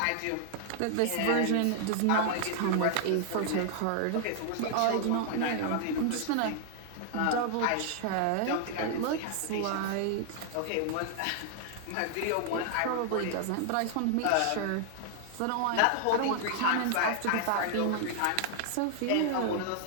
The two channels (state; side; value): different; both; correlation 0.00